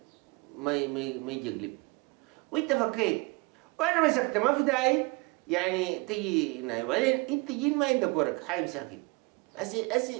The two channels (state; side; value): quieter; left; 27.0 dB